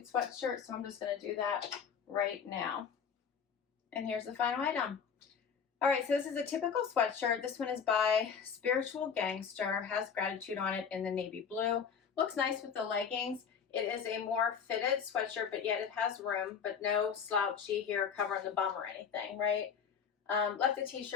sweatshirt. So I'm just going to do that right now. And here's the final item. All right, so this is a typical sweatshirt. This one is by Spiritual Gangster, has Gratitude on it in the navy blue. Looks nice with the leggings. It is a more fitted sweatshirt, but yet it has room, but no slouchy here covering the bum or anything, right? Left the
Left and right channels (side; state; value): right; quieter; 6.9 dB